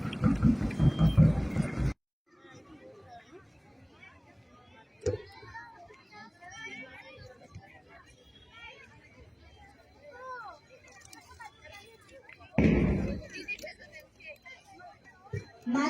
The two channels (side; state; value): both; identical; correlation 1.00